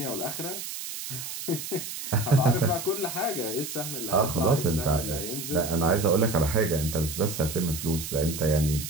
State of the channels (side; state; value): right; noise; hiss, 7 dB below the sound